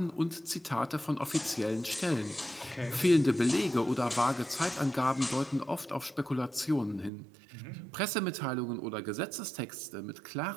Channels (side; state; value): left; drops out; at 7.1 s